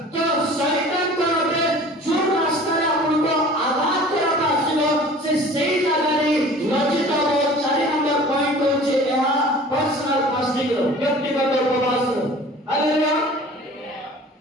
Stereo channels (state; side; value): normal; both; correlation 0.45